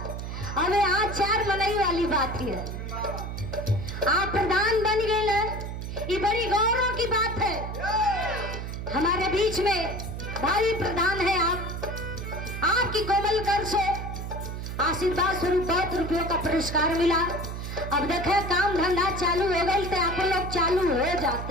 अबे आज 4 मनाई वाली बात है। आप प्रधान बन गए, ये बड़ी गौरव की बात है। हमारे बीच में भाई प्रधान है आप, आपकी कोमल कर से आशीर्वाद स्वरूप 2 रुपयों का पुरस्कार मिला। अब देखे काम धंधा चालू हो गई तो आप लोग चालू हो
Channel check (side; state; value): right; noise; hum, 6 dB below the sound